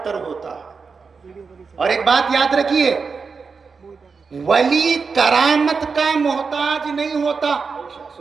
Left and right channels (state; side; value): quieter; left; 5.0 dB